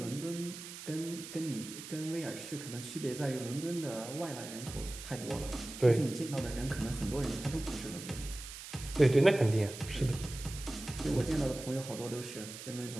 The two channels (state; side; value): noise; right; hiss, 11 dB below the sound